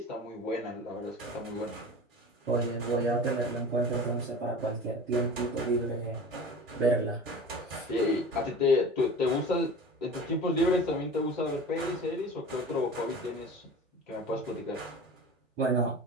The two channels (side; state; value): both; normal; correlation 0.36